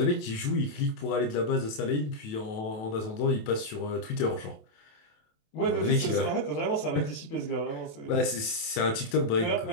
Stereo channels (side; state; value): right; late; 28 ms